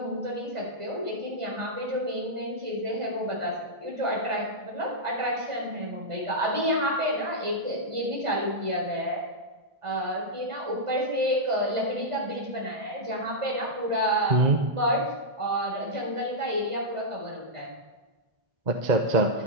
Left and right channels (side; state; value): left; late; 1.5 ms